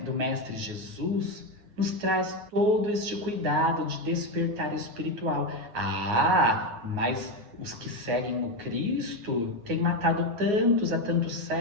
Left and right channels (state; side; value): late; left; 9.5 ms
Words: Mestre Jesus nos traz todo este cuidado de despertar espiritual. Ah, mas os que seguem o Cristo têm matado tantos há tantos